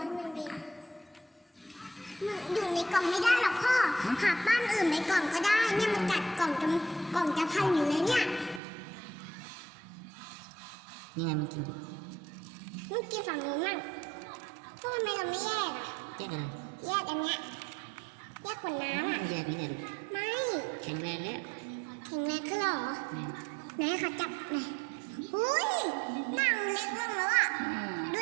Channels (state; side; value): drops out; left; at 8.6 s